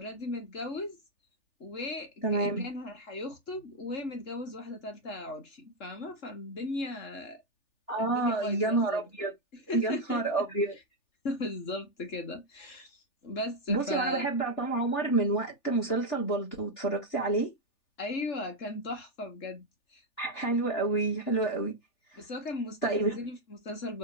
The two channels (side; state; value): right; late; 3.4 ms